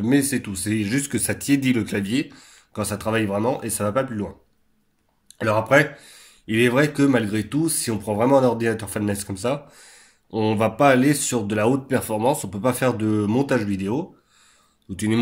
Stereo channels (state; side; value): identical; both; correlation 1.00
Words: mais c'est tout. C'est juste que ça tiédit le clavier quand ça travaille vraiment et ça va pas plus loin. Alors après, il est vrai que malgré tout, si on prend vraiment un ordinateur fanless comme ça, on va pas aller sur de la haute performance. On peut pas faire de montage vidéo, ou du